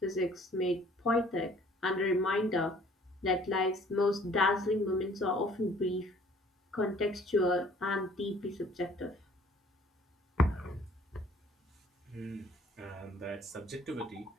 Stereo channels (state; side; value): normal; both; correlation 0.55